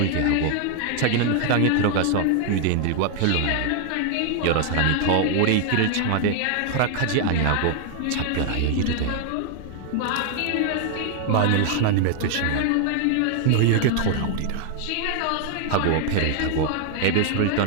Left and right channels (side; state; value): both; different; correlation 0.00